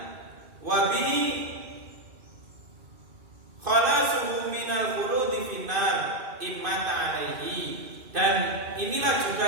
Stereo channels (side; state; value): left; late; 2.5 ms